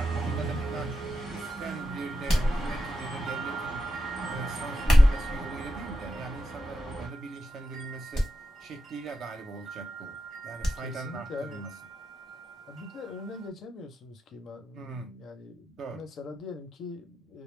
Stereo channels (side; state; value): both; normal; correlation 0.88